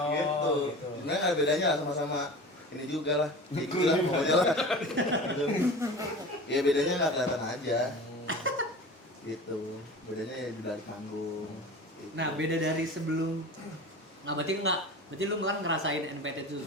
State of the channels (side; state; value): both; normal; correlation 0.35